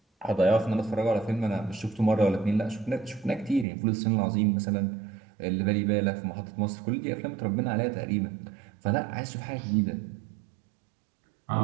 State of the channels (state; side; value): drops out; left; at 3.7 s